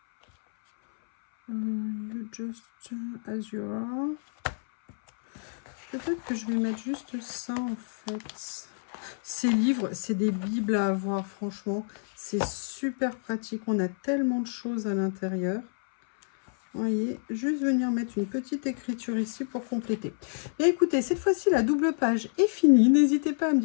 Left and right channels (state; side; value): silent; right; 59 dB below the other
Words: You just as you are. Peut-être que je vais mettre juste ça, en fait. Ces livres, c'est des bibles à avoir, franchement. C'est super pratique. On a tellement de choses à l'intérieur. Vous voyez, juste venir mettre une petite écriture ici pour compléter. Et écoutez, cette fois-ci, la double page est finie. N'hésitez pas à me